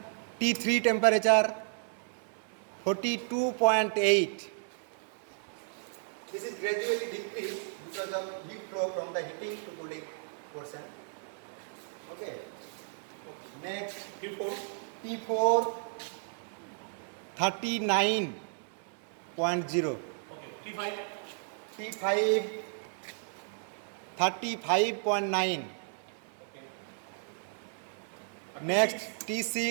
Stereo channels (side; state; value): left; silent; 56 dB below the other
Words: T3 temperature 42.8. This is gradually decreased because of heat flow from the heating to cooling portion. Okay. Next T4 39.0. Okay. T5 35.9. Next